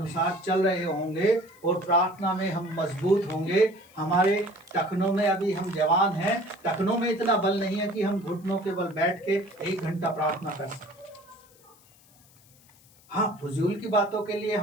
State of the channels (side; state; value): left; noise; hiss, 28 dB below the sound